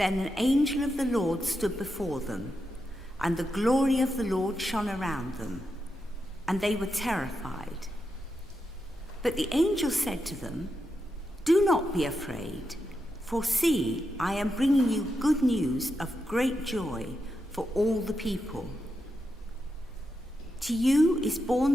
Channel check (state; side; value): normal; both; correlation 0.86